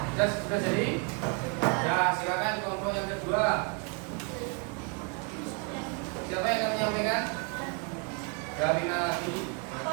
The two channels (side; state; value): left; quieter; 35.1 dB